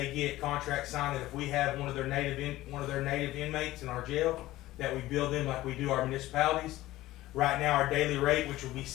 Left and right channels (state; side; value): quieter; right; 16.5 dB